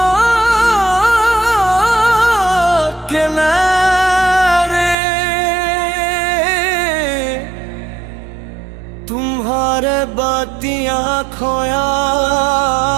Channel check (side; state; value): left; drops out; at 5.0 s